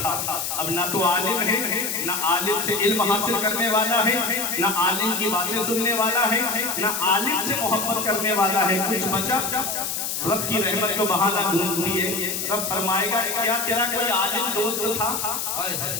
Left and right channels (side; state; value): left; noise; hiss, 2 dB below the sound